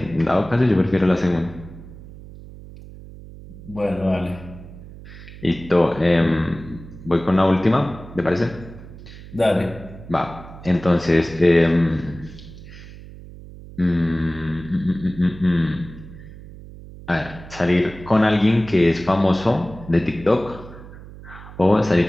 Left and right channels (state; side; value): noise; right; hum, 16 dB below the sound